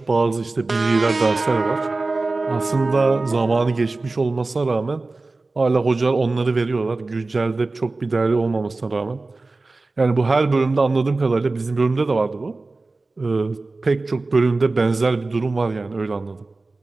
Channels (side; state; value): left; quieter; 3.4 dB